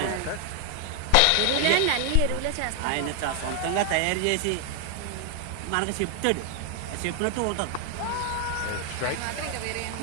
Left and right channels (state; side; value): different; both; correlation 0.00